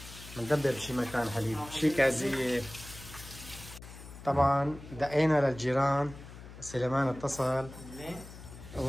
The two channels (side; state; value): left; noise; hum, 15 dB below the sound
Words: بندبر بشي مكان حليب، شي كازية. طبعا دقينا للجيران، سليمان اتصل